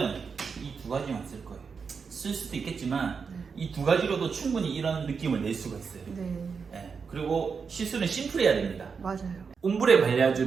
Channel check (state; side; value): quieter; left; 5.6 dB